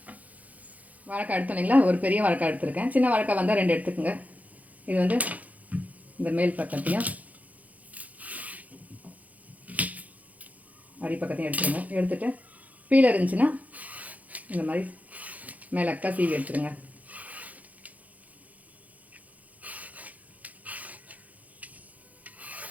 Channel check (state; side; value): late; left; 0.075 ms